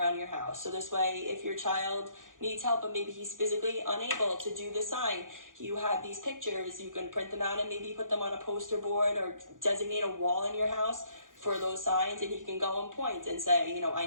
your house. So this way, if your child needs help, but maybe he's physically unable to do the sign, you have these pictures, you can print them out and maybe put them on a poster board or designate a wall in your house for those signs, and he can go and point and say, I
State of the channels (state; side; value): late; left; 0.89 ms